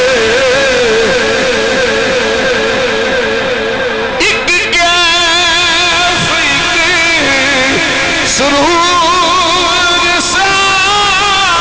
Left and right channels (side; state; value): left; noise; rumble, 16 dB below the sound